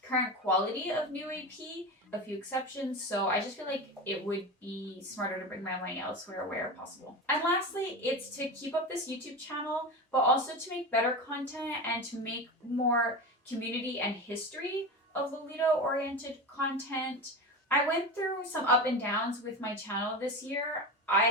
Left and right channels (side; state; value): both; normal; correlation 0.24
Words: current quality of new AP, a few exceptions, so I just feel like it would be smarter to bring my money elsewhere where possible. And lastly, it's to keep up this YouTube channel, but also to make better content and to make more community and history of Lolita-oriented content. I went through some up and downs with my channel this year. I